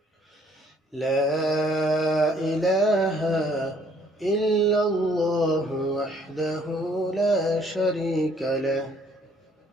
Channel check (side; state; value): both; normal; correlation 0.63